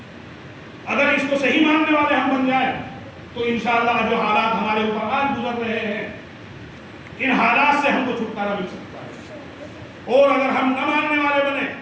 اگر اس کو صحیح ماننے والے ہم بن جائیں تو انشاءاللہ جو حالات ہمارے اوپر آج گزر رہے ہیں، ان حالات سے ہم کو چھٹکارا مل سکتا ہے۔ اور اگر ہم نہ ماننے والے بنے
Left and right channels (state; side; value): identical; both; correlation 1.00